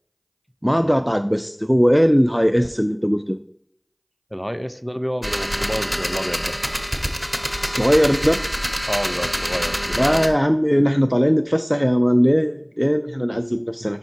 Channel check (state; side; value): identical; both; correlation 1.00